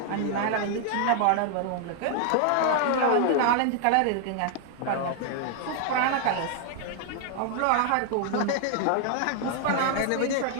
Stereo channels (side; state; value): both; different; correlation 0.00